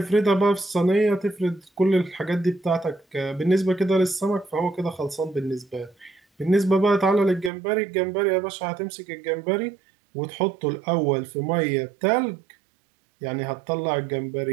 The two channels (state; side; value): drops out; left; at 7.5 s